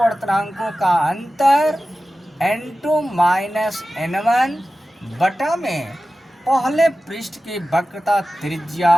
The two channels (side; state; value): both; normal; correlation 0.95